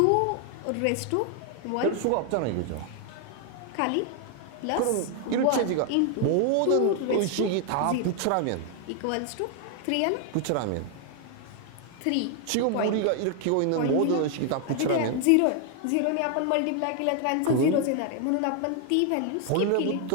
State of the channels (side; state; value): both; different; correlation 0.00